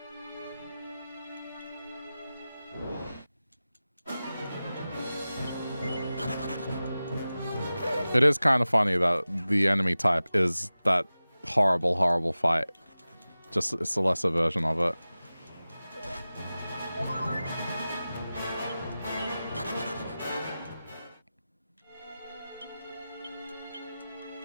It is kind of funny that the enemy type is that horrible, horrible fight. Just, it's a lesser version of it.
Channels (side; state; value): both; inverted; correlation -0.96